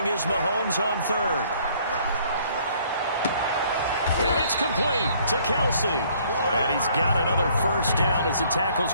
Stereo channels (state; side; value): inverted; both; correlation -0.61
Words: is Mahomes on 3rd. And it's complete to Kelsey. And he's got another 1st down as the